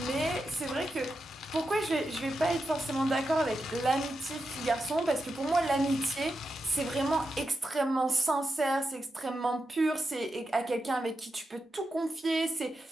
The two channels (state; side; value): normal; both; correlation 0.88